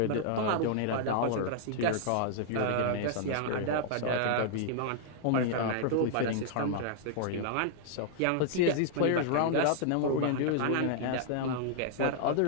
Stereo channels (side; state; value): both; different; correlation -0.01